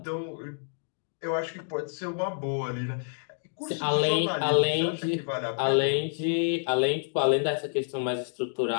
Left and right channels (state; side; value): silent; right; digital silence